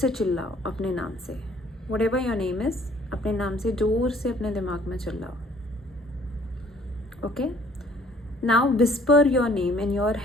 चिल्लाओ अपने नाम से। Whatever your name is, अपने नाम से ज़ोर से अपने दिमाग में चिल्लाओ। Okay, now whisper your name in your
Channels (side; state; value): both; normal; correlation 0.58